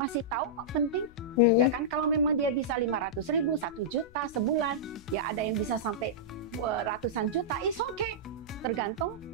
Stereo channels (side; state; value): left; noise; rumble, 22 dB below the sound